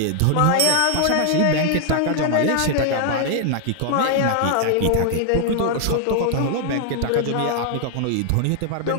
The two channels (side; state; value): both; different; correlation 0.00